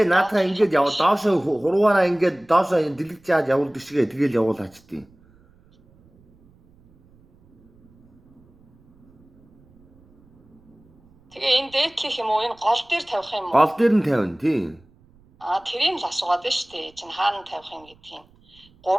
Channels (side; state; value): right; noise; rumble, 30 dB below the sound